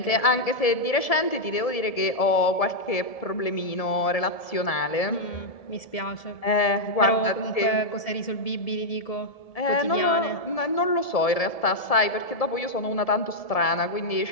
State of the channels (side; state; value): right; late; 1.7 ms